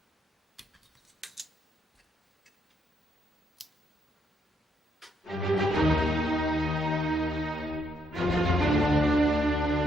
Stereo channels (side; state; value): both; normal; correlation 0.75